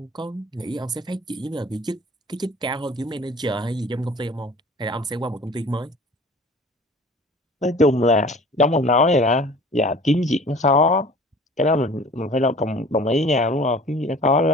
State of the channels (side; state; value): both; normal; correlation 0.46